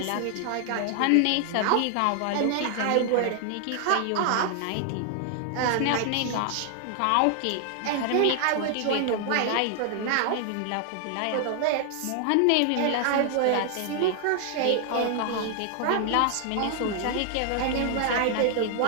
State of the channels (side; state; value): both; different; correlation 0.00